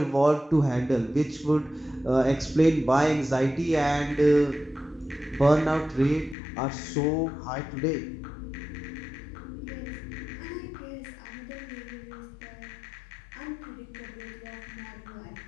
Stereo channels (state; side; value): drops out; right; at 6.4 s